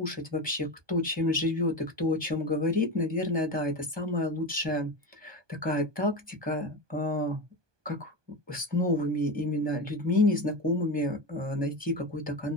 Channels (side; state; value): left; late; 1.2 ms